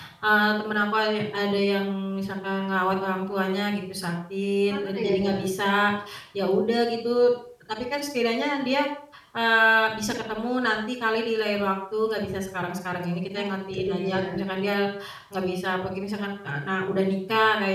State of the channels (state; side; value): identical; both; correlation 1.00